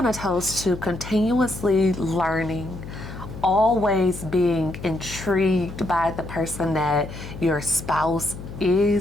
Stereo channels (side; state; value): left; noise; hum, 11 dB below the sound